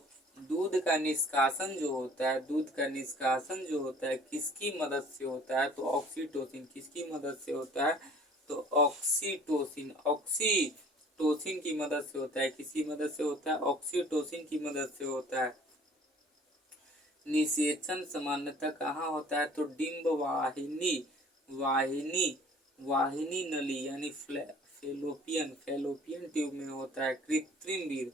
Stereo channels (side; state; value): both; normal; correlation 0.51